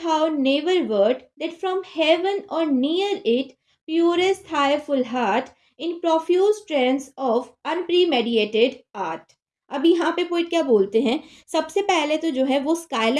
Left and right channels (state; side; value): identical; both; correlation 1.00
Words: never wert, that from heaven or near it, purest thy full heart, in profuse trance of unpremeditated art। अब यहाँ पे पोइट क्या बोलते हैं? सबसे पहले तो जो है वो